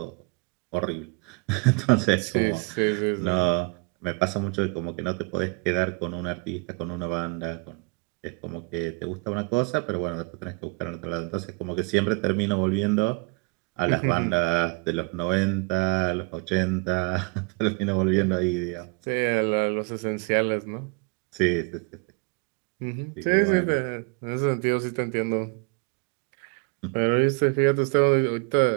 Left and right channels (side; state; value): left; quieter; 31.0 dB